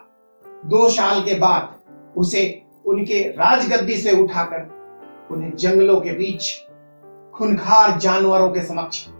2 साल के बाद उसे उनके राजगद्दी से उठाकर उन्हें जंगलों के बीच खूंखार जानवरों के समक्ष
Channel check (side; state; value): both; inverted; correlation -1.00